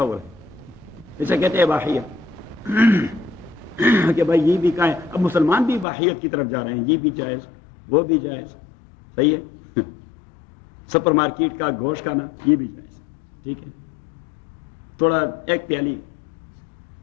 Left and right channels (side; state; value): right; drops out; at 5.9 s